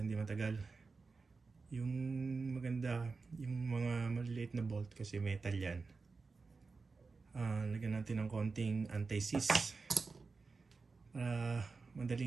matagal. Yung maganda, yung mga maliliit na bolt kasi metal yan. Lagyan natin ng konting anti-seize para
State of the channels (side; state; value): left; quieter; 4.3 dB